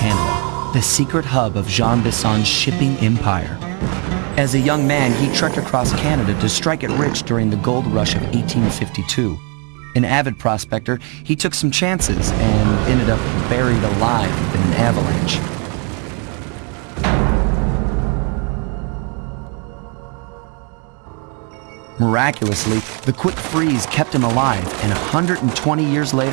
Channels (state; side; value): quieter; left; 35.8 dB